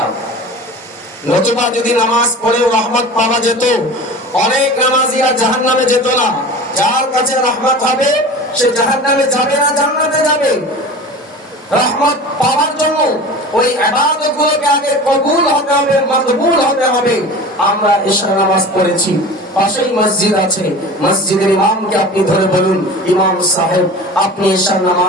নতুবা যদি নামাজ পড়েও রহমত পাওয়া যেত, অনেক নামাজিরা জাহান্নামে যেত না। যার কাছে রহমত হবে সে জাহান্নামে যাবে না, জান্নাতে যাবে। রহমত পাওয়ার জন্য ওই ইবাদতগুলোকে আগে কবুল হতে হবে, মকবুল হতে হবে। আমরা এশা নামাজ পড়েছি, পাশেই মসজিদ আছে, মসজিদের ইমামকে আপনি ধরে বলুন, ইমাম সাহেব আপনি এশা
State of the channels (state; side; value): normal; both; correlation 0.36